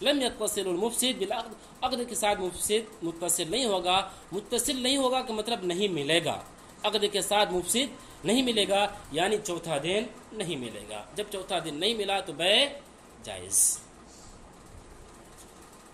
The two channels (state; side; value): identical; both; correlation 1.00